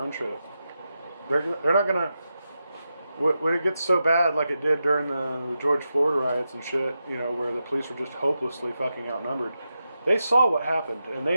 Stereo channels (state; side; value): inverted; both; correlation -0.89